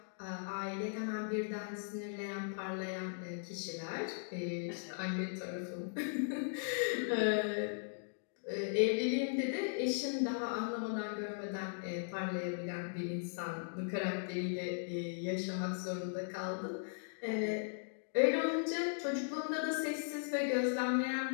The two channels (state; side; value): silent; right; digital silence